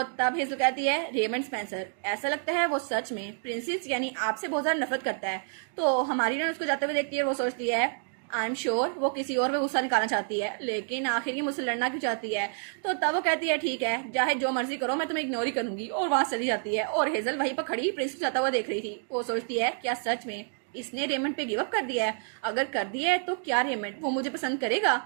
तब हेजल कहती है रेमंड स्पेंसर ऐसा लगता है वो सच में प्रिंसेस यानी आपसे बहुत ज़्यादा नफरत करता है। तो हमारी हीरोइन उसको जाते हुए देखती है। वो सोचती है आई एम श्योर वो किसी और पे गुस्सा निकालना चाहती है, लेकिन आखिर ये मुझसे लड़ना क्यों चाहती है? तो तब वो कहती है ठीक है चाहे जो मर्जी करो मैं तुम्हें इग्नोर ही करूंगी, और वहां चली जाती है। और हेजल वहीं पर खड़ी प्रिंस को जाता हुआ देख रही थी। वो सोचती है क्या सच में इसने रेमंड पे गिव अप कर दिया है? अगर कर दिया है तो क्या रेमंड वो मुझे पसंद करेगा?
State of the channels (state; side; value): silent; left; 59 dB below the other